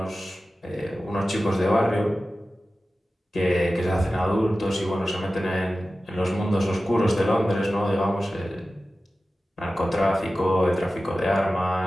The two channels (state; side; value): normal; both; correlation 0.95